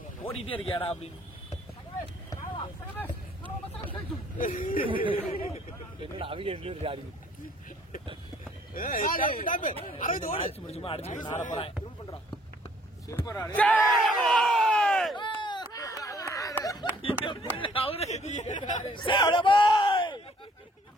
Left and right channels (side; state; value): both; normal; correlation 0.61